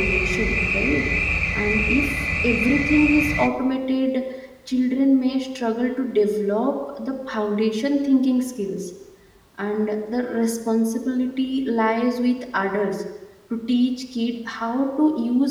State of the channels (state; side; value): identical; both; correlation 1.00